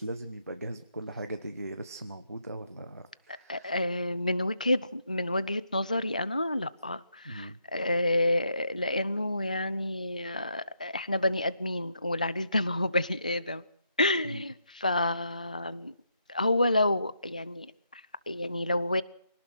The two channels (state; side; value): inverted; both; correlation -0.78